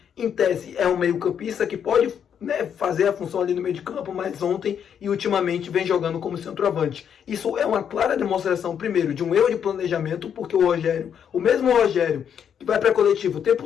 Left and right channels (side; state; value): right; quieter; 8.2 dB